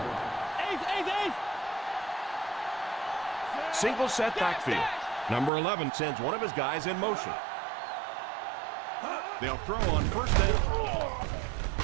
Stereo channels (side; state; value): left; drops out; at 5.5 s